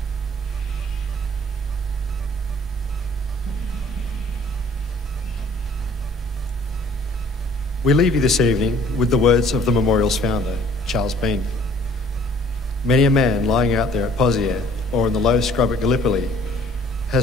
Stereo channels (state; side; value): normal; both; correlation 0.55